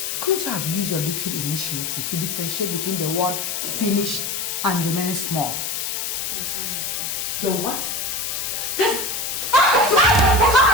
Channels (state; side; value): noise; left; hiss, 3 dB below the sound